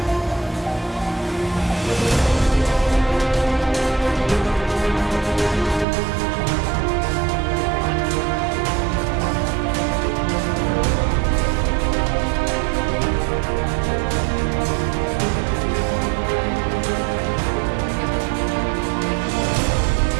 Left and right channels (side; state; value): left; drops out; at 5.9 s